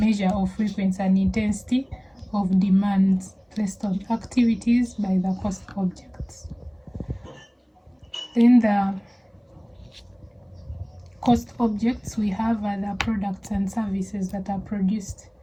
of frequency and intensity of demands placed on activities by the cost objects. Then the cost objects we have are the products and services that are produced,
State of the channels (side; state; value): both; identical; correlation 1.00